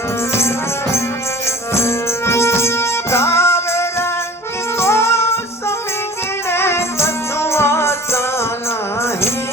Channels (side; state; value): both; normal; correlation 0.43